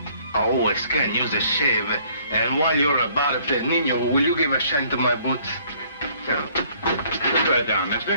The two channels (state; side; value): inverted; both; correlation -0.60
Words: always can use a shave. And while you're about it, Nino, will you give a shine to my boots? Yeah. Put that down,